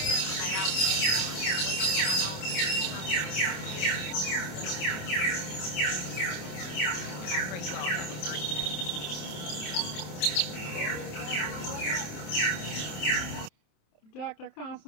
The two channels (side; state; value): right; late; 27 ms